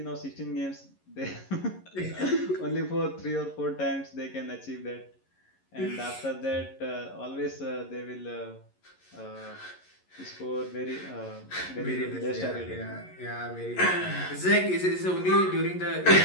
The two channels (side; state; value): right; late; 11 ms